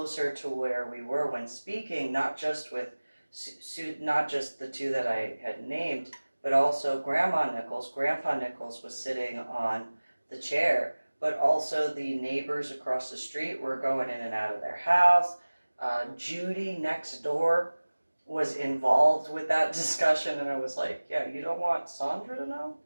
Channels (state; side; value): inverted; both; correlation -1.00